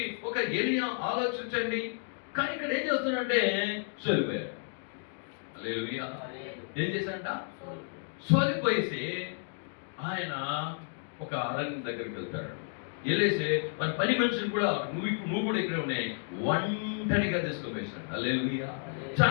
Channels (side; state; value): right; silent; 57 dB below the other